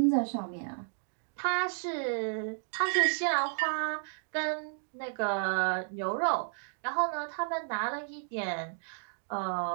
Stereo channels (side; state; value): left; silent; digital silence